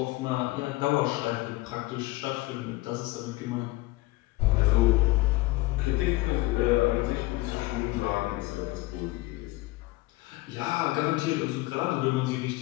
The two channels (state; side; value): quieter; right; 20.1 dB